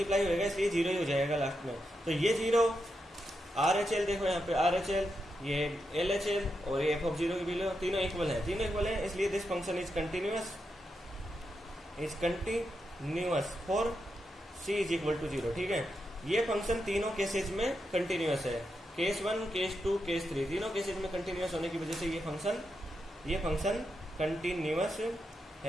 होगा इसलिए 0 ही हो जाएगा लास्ट में। तो ये 0 RHL देखो यहाँ पे RHL, ये LHL और ये f(0) की वैल्यू तीनों इक्वल है, इसलिए this function is continuous for c is equal to 0, ठीक है। ये फंक्शन तीनों केसेज में कंटिन्यूअस है, केस 1, केस 2, केस 3, तीनों केसेज में कंटिन्यूअस होने की वजह से ये फंक्शन कंटिन्यूअस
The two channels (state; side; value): normal; both; correlation 0.85